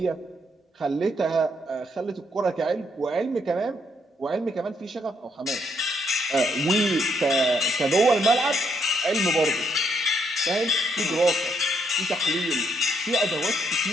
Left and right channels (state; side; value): normal; both; correlation 0.73